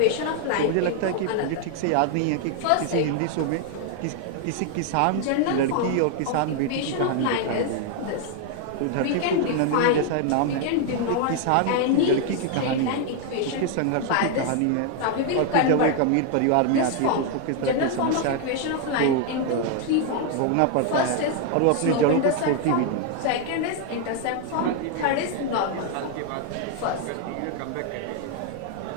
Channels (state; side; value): different; both; correlation 0.00